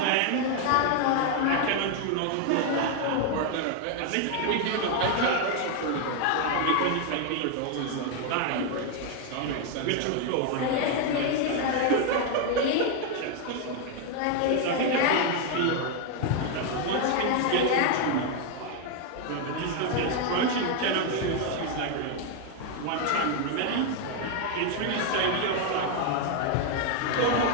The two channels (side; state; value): both; different; correlation 0.01